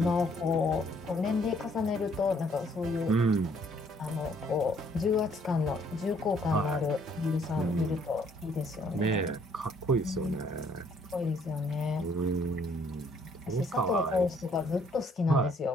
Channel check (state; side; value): normal; both; correlation 0.64